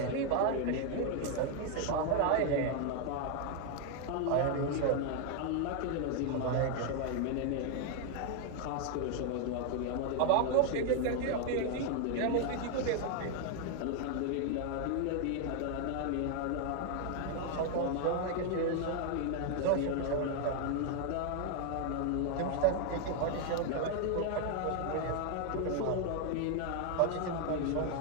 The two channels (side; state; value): both; different; correlation 0.00